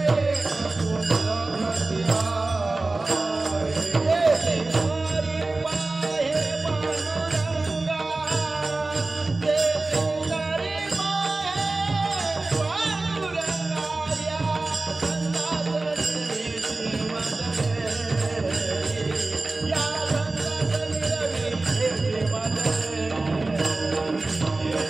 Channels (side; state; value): left; quieter; 3.2 dB